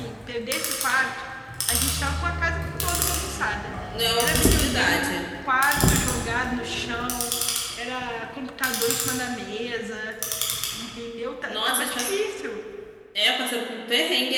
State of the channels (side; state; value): both; identical; correlation 1.00